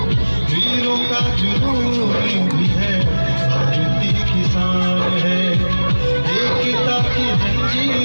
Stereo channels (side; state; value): both; inverted; correlation -1.00